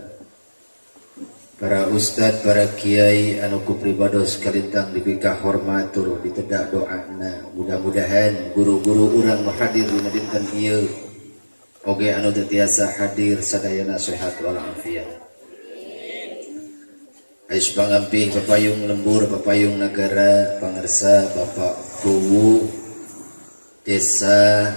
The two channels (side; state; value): both; inverted; correlation -1.00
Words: para ustad, para kiai anu ku pribados kalintang dipikah hormatur ditedak doana. Mudah-mudahan guru-guru urang hadir dina dinten ieu oge anu teu tiasa hadir sadayana sehat walafiat. Ais pangampih papayung lembur, papayung nagara, pangarsa Bapak Kuwu Desa